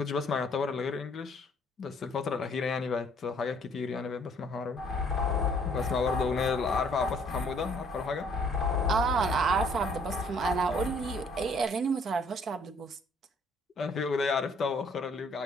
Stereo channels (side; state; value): both; normal; correlation 0.61